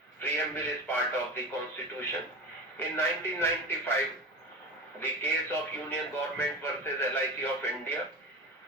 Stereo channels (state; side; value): normal; both; correlation 0.28